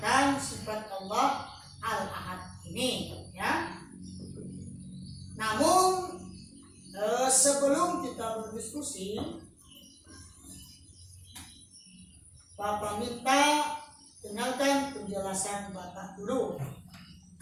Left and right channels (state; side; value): identical; both; correlation 1.00